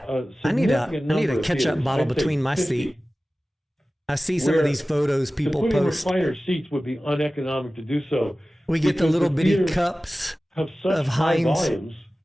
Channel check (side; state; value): both; normal; correlation 0.96